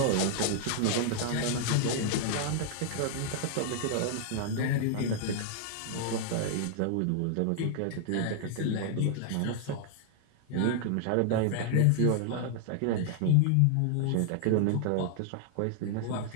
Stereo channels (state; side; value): different; both; correlation 0.00